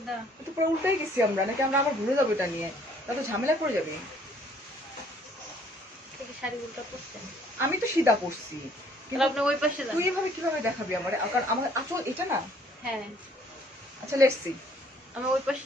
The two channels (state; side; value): normal; both; correlation 0.60